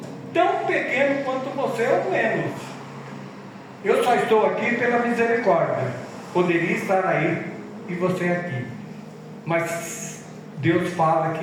tão pequeno quanto você ou menos. Eu só estou aqui pela misericórdia. Poderia estar aí e você aqui, mas Deus fala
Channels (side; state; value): both; identical; correlation 1.00